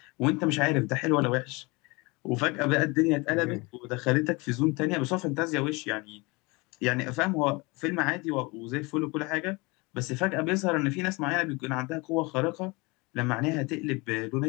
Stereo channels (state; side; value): quieter; right; 26.3 dB